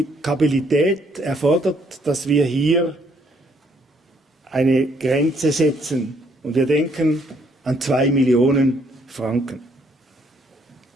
erfordert, dass wir hier eine Grenze setzen. Und wir denken an 2 Millionen Franken.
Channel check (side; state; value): both; normal; correlation 0.68